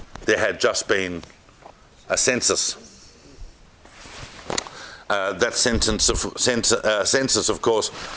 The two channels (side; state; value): both; identical; correlation 1.00